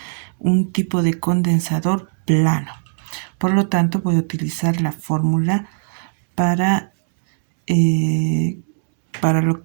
un tipo de condensador plano. Por lo tanto, voy a utilizar la fórmula para lo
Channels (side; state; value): left; silent; digital silence